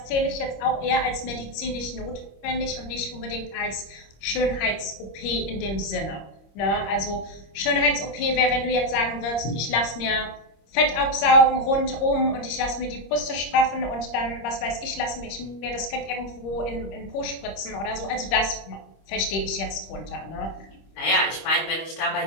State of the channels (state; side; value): late; right; 25 ms